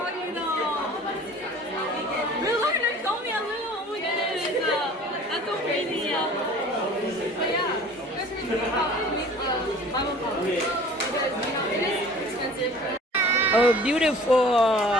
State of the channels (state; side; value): normal; both; correlation 0.47